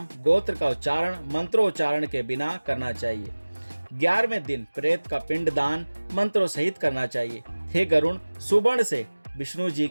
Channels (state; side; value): inverted; both; correlation -1.00